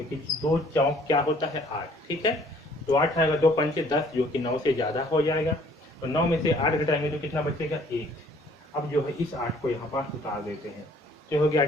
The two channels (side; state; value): both; normal; correlation 0.58